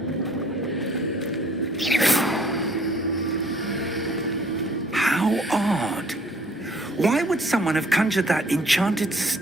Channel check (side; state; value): both; normal; correlation 0.58